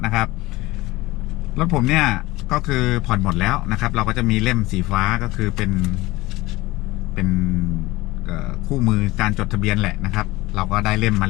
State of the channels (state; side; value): quieter; right; 19.7 dB